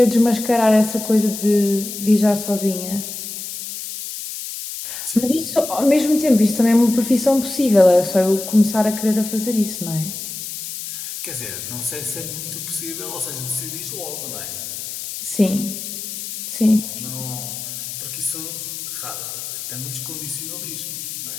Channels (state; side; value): noise; left; hiss, 8 dB below the sound